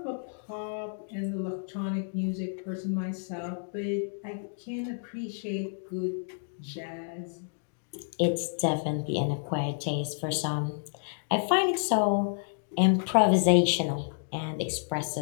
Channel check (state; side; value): silent; right; digital silence